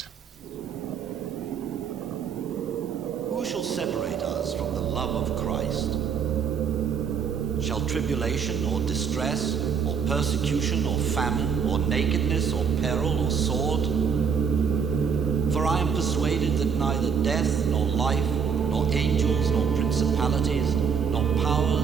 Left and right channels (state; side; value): quieter; left; 6.7 dB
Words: Who shall separate us from the love of Christ? Shall tribulation or distress, or persecution, or famine, or nakedness, or peril, or sword? For I am persuaded that neither death, nor life, nor angels, nor principalities, nor